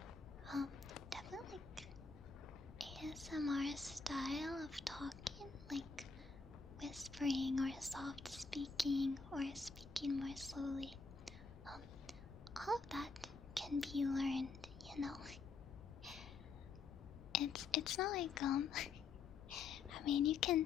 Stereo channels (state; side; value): quieter; right; 4.6 dB